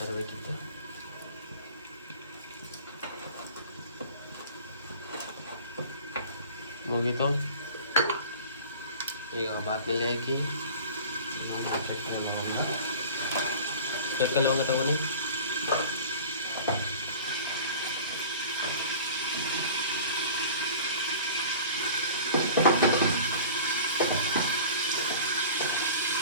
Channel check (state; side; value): inverted; both; correlation -0.41